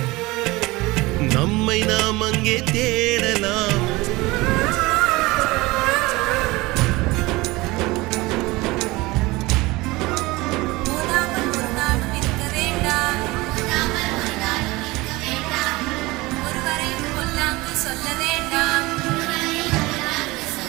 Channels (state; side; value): quieter; left; 21.5 dB